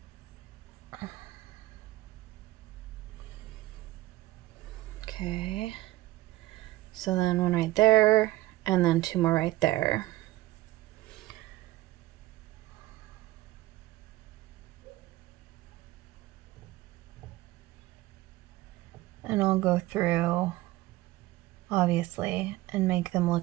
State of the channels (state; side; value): quieter; left; 17.5 dB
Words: Okay. So then one right there, and then two more right there. And I'll go through, obviously, and make them